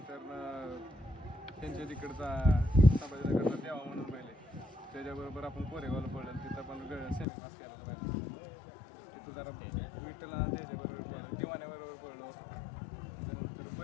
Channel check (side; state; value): right; drops out; at 7.2 s